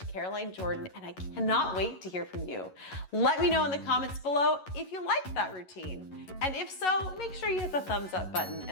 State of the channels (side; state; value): right; late; 11 ms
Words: Caroline Jordan, and I cannot wait to hear from you. Let me know in the comments below if you liked that routine. And if so, make sure you hit the thumbs up button